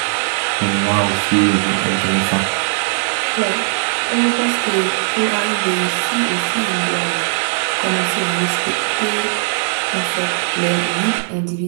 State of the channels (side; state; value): left; silent; 66 dB below the other